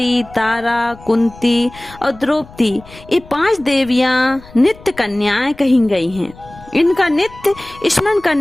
तारा, कुंती और द्रौपदी ये 5 देवियाँ नित्य कन्याएं कही गई हैं। इनका नित्य स्मरण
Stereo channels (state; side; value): noise; left; rumble, 21 dB below the sound